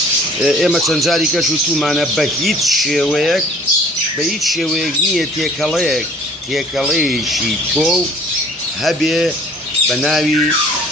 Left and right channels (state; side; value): normal; both; correlation 0.52